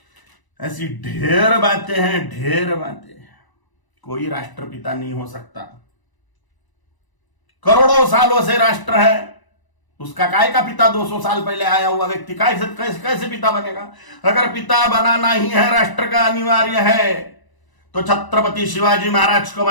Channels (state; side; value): late; right; 1.0 ms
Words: ऐसी ढेर बातें हैं, ढेर बातें। कोई राष्ट्रपिता नहीं हो सकता। करोड़ों सालों से राष्ट्र है, उसका काय का पिता 200 साल पहले आया हुआ व्यक्ति कैसे पिता बनेगा? अगर पिता बनाना ही है, राष्ट्र का अनिवार्य है, तो छत्रपति शिवाजी महाराज को